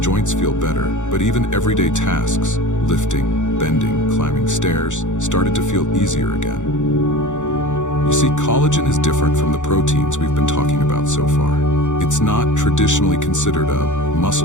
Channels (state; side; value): late; right; 0.85 ms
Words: feel better, but even everyday tasks, lifting, bending, climbing stairs, started to feel easier again. You see, collagen is different from the proteins we've been talking about so far. It's not traditionally considered a